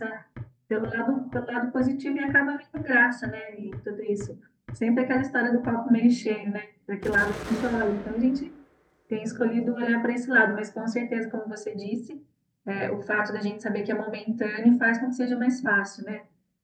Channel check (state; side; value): identical; both; correlation 1.00